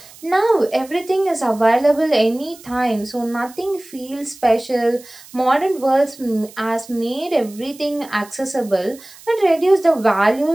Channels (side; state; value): right; noise; hiss, 21 dB below the sound